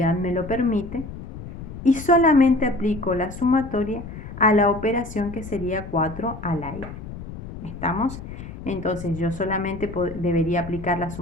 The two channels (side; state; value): left; noise; rumble, 11 dB below the sound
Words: me lo permite, y solamente aplico la sumatoria a la operación que sería 4 a la i. ¿Estamos? Entonces yo solamente debería aplicar la